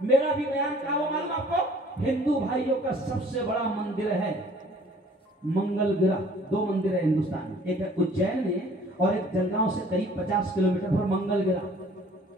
भी बयान क्या हो मालूम आपको, हिंदू भाइयों का सबसे बड़ा मंदिर है मंगल ग्रह। 2 मंदिर है हिंदुस्तान में, एक है उज्जैन में और एक जलगांव से करीब 50 किलोमीटर पर मंगल ग्रह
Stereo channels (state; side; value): normal; both; correlation 0.54